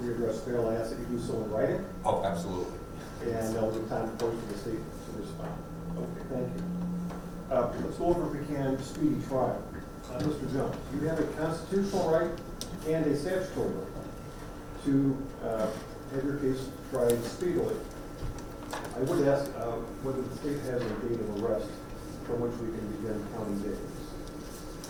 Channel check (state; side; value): identical; both; correlation 1.00